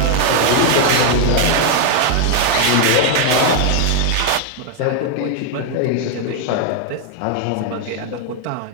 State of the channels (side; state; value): both; different; correlation 0.00